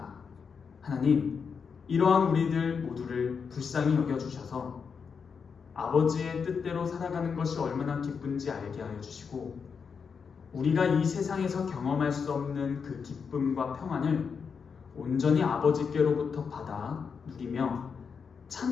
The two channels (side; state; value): right; quieter; 6.0 dB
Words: 하나님, 이러한 우리들 모두를 불쌍히 여겨주셔서 아버지의 뜻대로 살아가는 것이 얼마나 기쁜지 알게 하여 주시고 우리가 이 세상에서 경험할 수 없는 그 기쁨과 평안을 온전히 아버지께로부터 받아 누리며